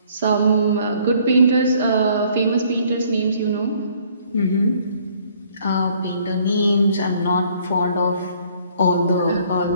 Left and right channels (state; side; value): inverted; both; correlation -0.61